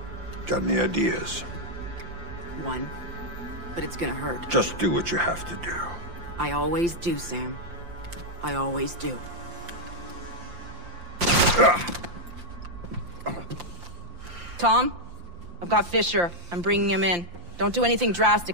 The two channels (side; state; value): left; late; 5.8 ms